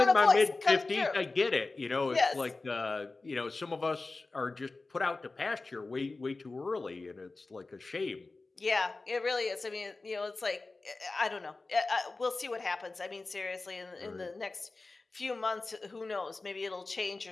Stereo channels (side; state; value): right; quieter; 3.5 dB